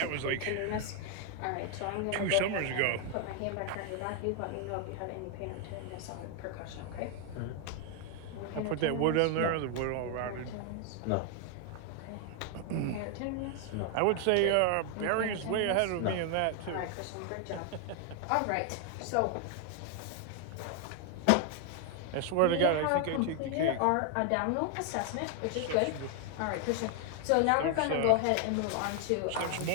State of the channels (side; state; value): both; different; correlation 0.00